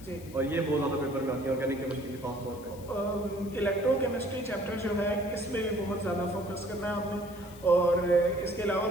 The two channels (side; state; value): left; noise; hiss, 21 dB below the sound